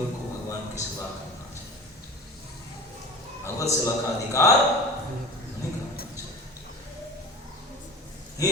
को भगवान की सेवा करना चाहिए। भगवत सेवा का अधिकार नहीं करना चाहिए। ये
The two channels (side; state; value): both; normal; correlation 0.36